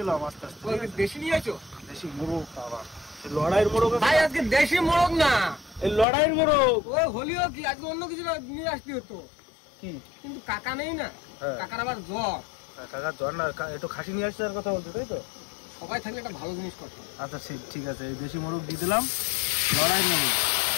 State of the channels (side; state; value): right; drops out; at 6.1 s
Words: আস্তে আস্তে। ওই দেশি নিয়ে আছো দেশি মোরগ বাবা এই লড়াইয়ের মোরগ আছে। ভাই আজকে দেশি মোরগ না এই লড়াইয়ের মোরগ ওই হলিও কি আজকে অন্য কিছু নিয়ে আসতে হতো কি কিন্তু কাকা নেই না হ্যাঁ। কাকার আবার জ্বর কাকা জ্বর না একটু খাসি নিয়ে আসছে আর কথা বলতে তাই তো। সবাই থাকলে একটা ভালো জিনিস করতো আচ্ছা ঠিক আছে এই দেশি মোরগ দিয়ে দিলাম লড়াইয়ের মোরগ